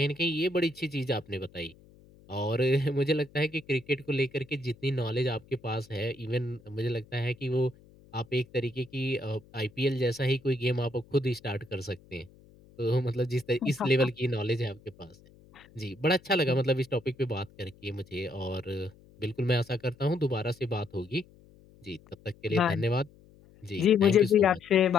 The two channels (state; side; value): noise; left; hum, 26 dB below the sound